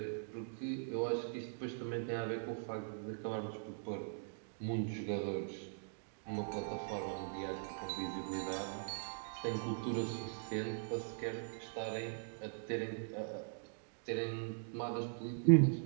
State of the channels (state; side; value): silent; left; digital silence